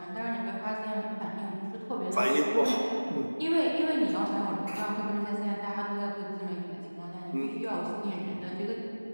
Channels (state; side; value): inverted; both; correlation -1.00